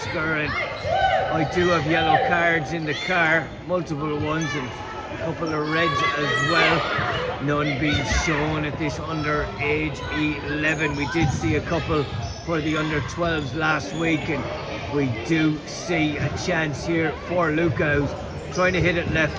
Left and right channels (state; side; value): identical; both; correlation 1.00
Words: and I do have yellow cards in the car, multiple ones and a couple of reds as well. None being shown at this under age 11. We did see a couple for the under 12s last week, and we do see a chance here for Luca, who's trying to hit it